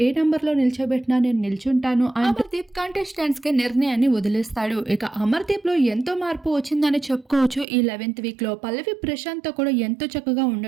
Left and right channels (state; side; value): drops out; left; at 7.7 s